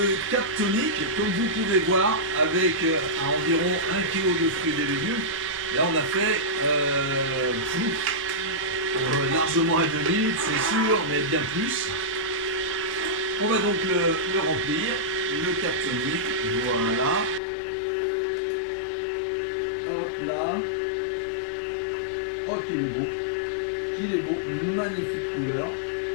cap tonique, comme vous pouvez voir, avec environ 1 kg de fruits et légumes. Là, on a fait largement à 2 litres, c'est sûr, mais bien plus. On va donc le remplir, le cap tonique, voilà. Hop là. Oh, qu'il est beau, magnifique couleur.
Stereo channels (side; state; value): right; drops out; at 17.4 s